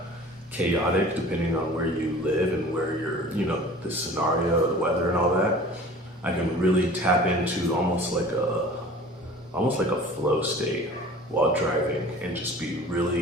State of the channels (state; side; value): normal; both; correlation 0.43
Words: chaotic depending on where you live and where the scenario, the weather and all that. I can really tap into almost like a flow state while driving and just be